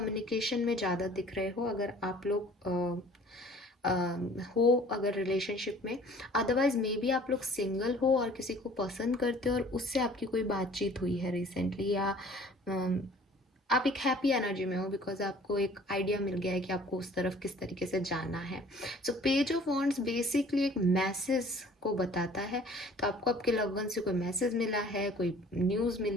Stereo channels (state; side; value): normal; both; correlation 0.51